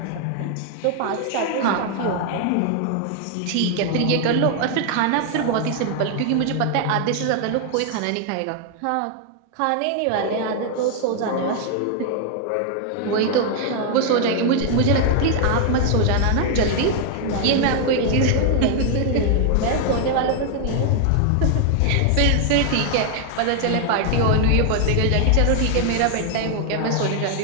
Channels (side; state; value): both; different; correlation 0.00